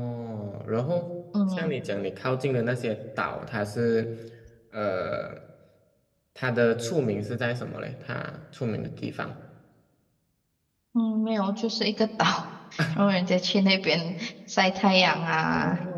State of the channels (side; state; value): both; identical; correlation 1.00